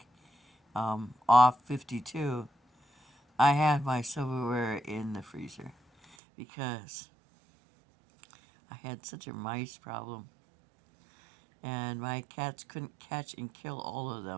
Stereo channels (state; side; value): drops out; left; at 6.2 s